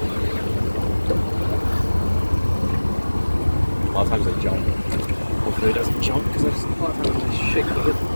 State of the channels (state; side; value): inverted; both; correlation -1.00